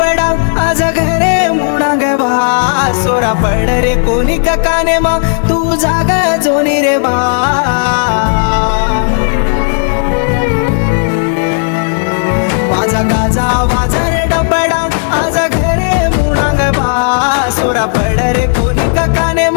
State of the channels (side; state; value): right; silent; digital silence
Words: आज घरे मुणाग बा सोरा पड रे कोणी काने मा तू जागा जोनी रे बा वाजा गाजा वाजा रे डबडा आज घरे मुणाग बा सोरा पड रे कोणी काने